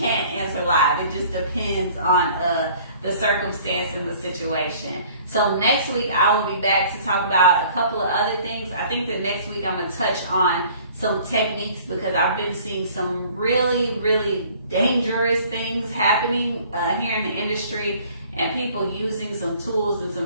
answer live. It just depends on the circumstance and the situation. So next week I will be back to talk about a couple of other things. I think the next week I'm going to touch on some techniques, because I've been seeing some really, really dangerous things happening here in the industry, and people using some tools in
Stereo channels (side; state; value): both; inverted; correlation -0.53